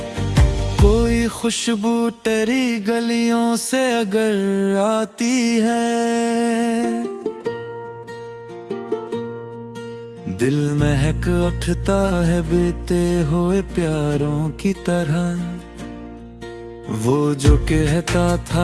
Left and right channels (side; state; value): both; identical; correlation 1.00